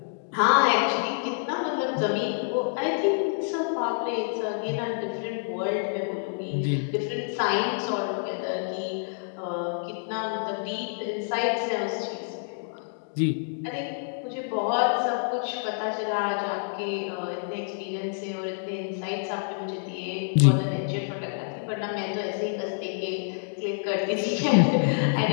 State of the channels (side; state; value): right; silent; digital silence